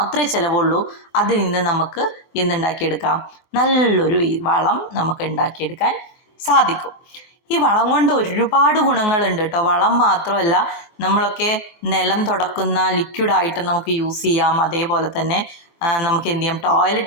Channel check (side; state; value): right; late; 23 ms